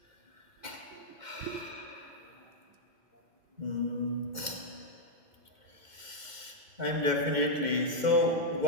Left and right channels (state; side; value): late; left; 2.1 ms